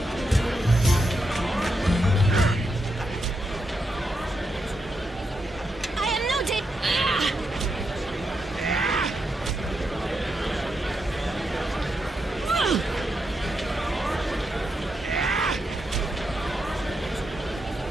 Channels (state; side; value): normal; both; correlation 0.83